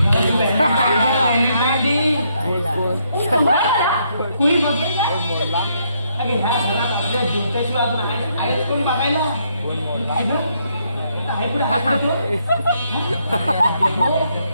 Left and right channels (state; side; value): inverted; both; correlation -0.74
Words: जुत्याशिवाय अजून आहेच कोणी बघायला